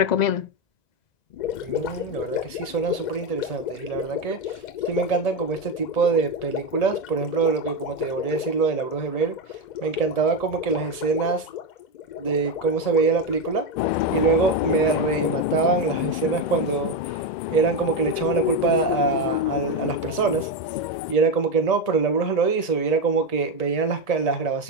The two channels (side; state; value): right; late; 1.7 ms